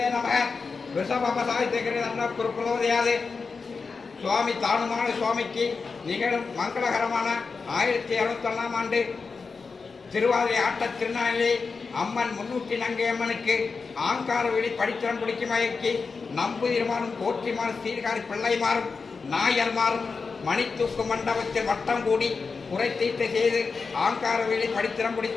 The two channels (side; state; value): right; quieter; 4.7 dB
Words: நமக ரிஷபசாய்த்திகிற குருகுலோதயாது சுவாமி தானுமான சுவாமிக்கு நிகழும் மங்களகரமான 1761 ஆண்டு திருவாதிரை ஆட்ட திருநாளிலே அம்மன் முன்னூற்றி நங்கை அம்மனுக்கு ஆங்கார வெளி படித்திரம் பிடிக்கும் வகைக்கு நம்புதிருமாறும் போற்றிமாறும் சீர்காரி பிள்ளைமாறும் நாயர்மாறும் மணித்தூக்கு மண்டபத்தில் வட்டம் கூடி குறை தீர்த்து செய்து ஆங்கார வெளி படித்திரம்